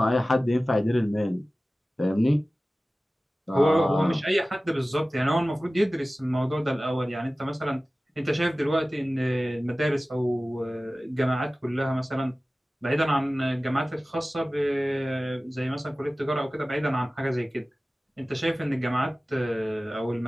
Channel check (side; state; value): both; normal; correlation 0.97